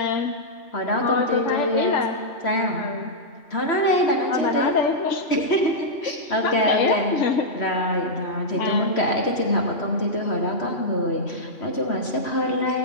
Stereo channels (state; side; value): late; right; 3.1 ms